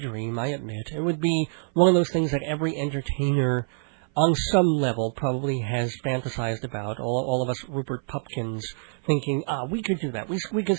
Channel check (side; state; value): left; silent; 56 dB below the other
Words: I admit. It would be one of those things that every entertainer on some level probably has fantasized about, all of us Rupert Pupkins thinking, we could do that. We could